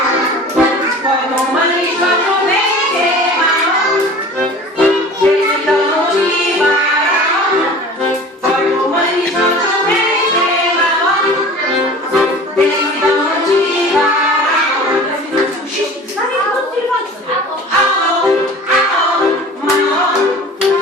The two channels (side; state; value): both; normal; correlation 0.41